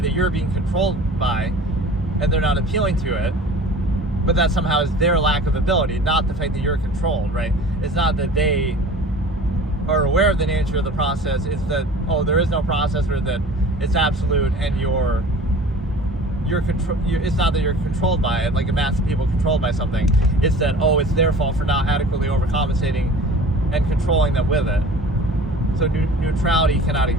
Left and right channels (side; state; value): both; normal; correlation 0.42